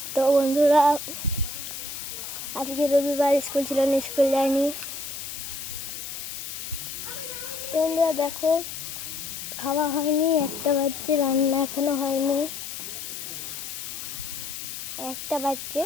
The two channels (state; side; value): noise; left; hiss, 8 dB below the sound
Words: তো বন্ধুরা, আজকে রবিবার, স্কুল ছিল না, স্কুল যায়নি। তো বন্ধুরা দেখো, খাওয়া হয়নি, 1টা বাজছে, রান্না এখনো হয়নি। 1টা বাজছে,